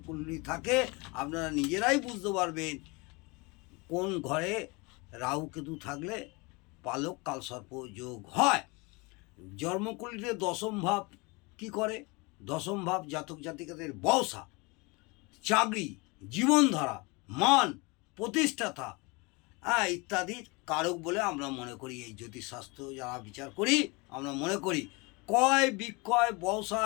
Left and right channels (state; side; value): quieter; right; 27.2 dB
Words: থাকে, আপনারা নিজেরাই বুঝতে পারবেন কোন ঘরে রাহু কেতু থাকলে পালক কালসর্প যোগ হয়। জন্মকুণ্ডলীতে দশম ভাব কি করে? দশম ভাব জাতক জাতিকাদের ব্যবসা, চাকরি, জীবনধারা, মান, প্রতিষ্ঠাতা ইত্যাদির কারক বলে আমরা মনে করি। এই জ্যোতিষশাস্ত্র যারা বিচার করি, আমরা মনে করি ক্রয় বিক্রয়